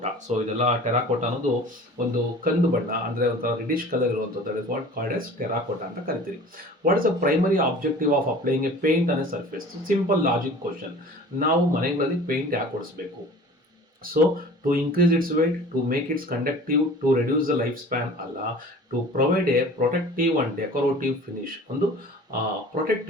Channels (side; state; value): both; normal; correlation 0.43